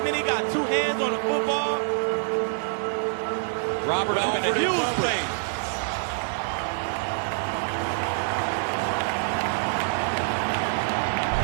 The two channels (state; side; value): silent; left; 59 dB below the other